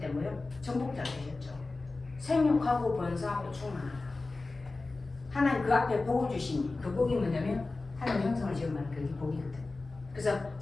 뭐요? 정복자 되셨죠. 생육하고 번성하고 충만하다. 하나님 그 앞에 복을 주시니 그 복이 뭐냐면 하나님 형상을 지음하는 그게 복이거든. 그래서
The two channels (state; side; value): quieter; right; 3.5 dB